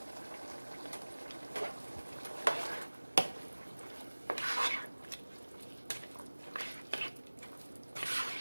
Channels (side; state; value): both; inverted; correlation -1.00